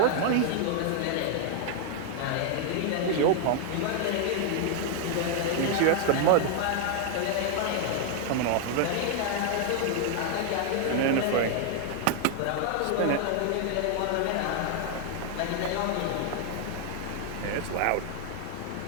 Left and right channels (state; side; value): different; both; correlation 0.00